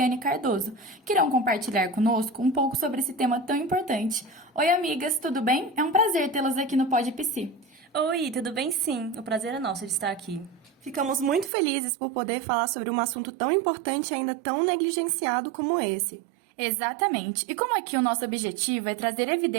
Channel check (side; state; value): left; drops out; at 11.5 s